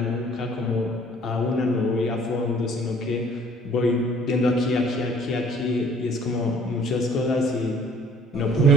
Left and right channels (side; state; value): both; normal; correlation 0.55